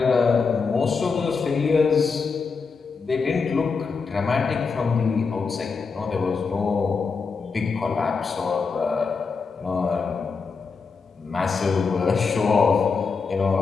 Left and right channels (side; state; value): right; quieter; 5.0 dB